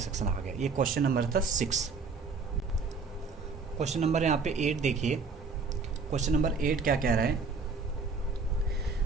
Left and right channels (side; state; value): left; quieter; 4.5 dB